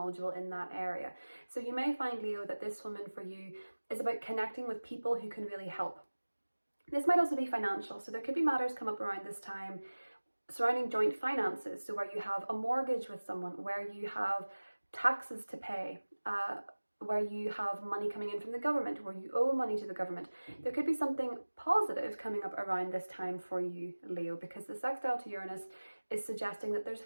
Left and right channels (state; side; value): inverted; both; correlation -1.00